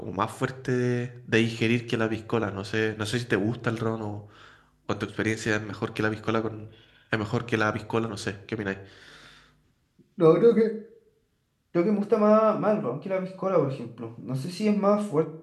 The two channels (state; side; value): identical; both; correlation 1.00